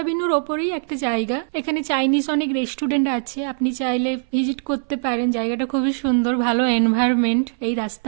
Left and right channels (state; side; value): silent; left; 62 dB below the other